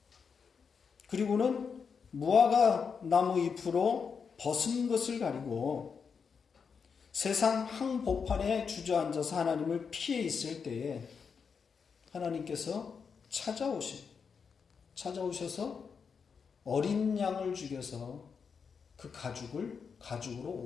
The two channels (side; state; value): right; quieter; 6.0 dB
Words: 그리고는 무화과 나무 잎으로 벗은 것을 가리고 세상 한복판에 주저앉아서 하나님을 피해 있을 때에 하나님께서 찾아오셔서 어린 양을 죽여서 그 가죽으로